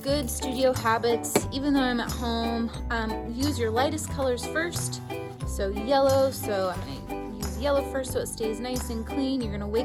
studio habits, even though I'm at home. Use your lightest colors first. So yellow, so I'm gonna use yellow first so it stays nice and clean. You're gonna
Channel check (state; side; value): identical; both; correlation 1.00